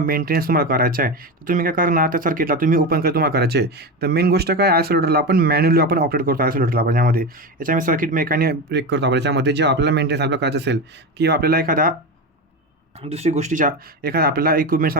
मेंटेनन्स करायचं आहे, तर तुम्ही काय करणार? त्या सर्किटला तुम्ही ओपन तुम्हाला करायचे. तर मेन गोष्ट काय, आयसोलेटरला आपण मॅन्युअली आपण ऑपरेट करतो. आयसोलेटरला आपण याच्यामध्ये सर्किट मेकॅनिक ब्रेक करतो आपण याच्यामध्ये. जे आपल्याला मेंटेनन्स आपल्याला करायचं असेल किंवा आपल्याला एखादा दुसरी गोष्टीच्या एखादा आपल्याला इक्विपमेंट्स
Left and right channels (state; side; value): normal; both; correlation 0.19